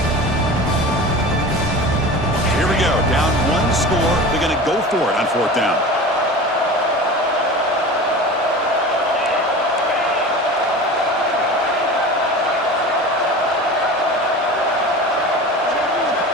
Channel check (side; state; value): both; normal; correlation 0.34